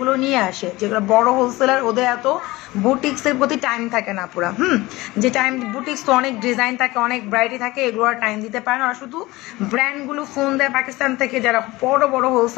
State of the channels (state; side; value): quieter; right; 20.1 dB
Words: নিয়ে আসে, যেগুলো বড় হোলসেলার ওদের এত বুটিক্সের প্রতি টাইম থাকে না পুরা। যে টাইম বুটিক্স তো অনেক ডিজাইন থাকে, অনেক ভ্যারাইটি থাকে, এগুলো আর টাইম দিতে পারে না। আর শুধু ব্র্যান্ডগুলো ফোন দেয় পাকিস্তান থেকে, যারা বড় বড়